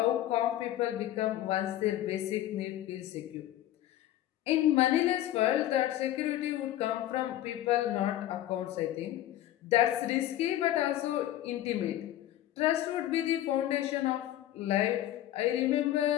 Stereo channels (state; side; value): quieter; right; 13.4 dB